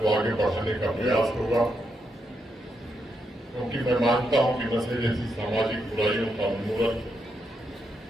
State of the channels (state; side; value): normal; both; correlation 0.81